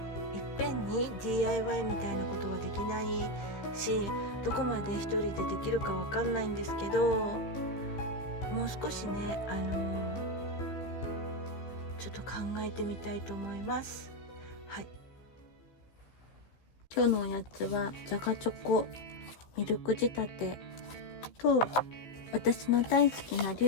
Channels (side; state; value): right; late; 15 ms